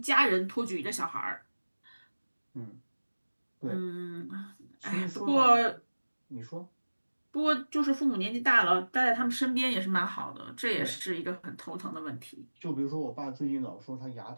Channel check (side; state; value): both; inverted; correlation -1.00